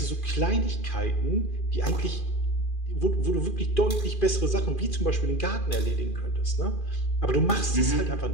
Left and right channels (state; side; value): late; right; 2.4 ms